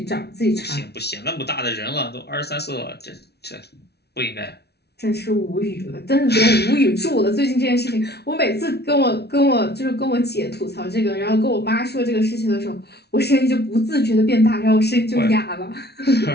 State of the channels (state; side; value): late; right; 0.48 ms